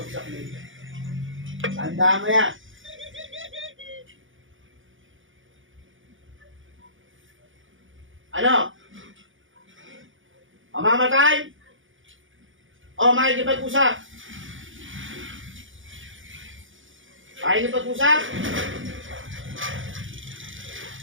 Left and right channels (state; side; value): late; left; 0.57 ms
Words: nito. Tanda mo yan. Ano? Mamamatay? O makikipag-usap? Makikipag-usap?